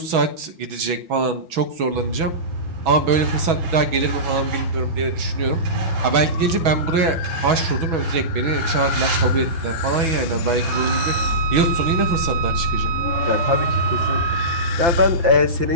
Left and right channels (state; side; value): late; left; 6.1 ms